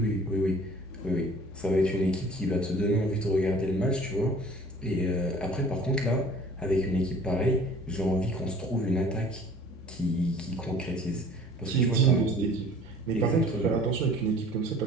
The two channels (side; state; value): both; normal; correlation 0.49